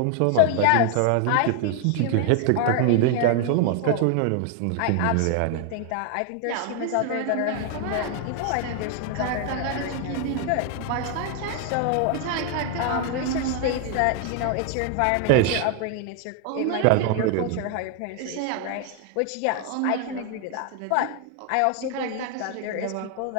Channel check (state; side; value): different; both; correlation 0.00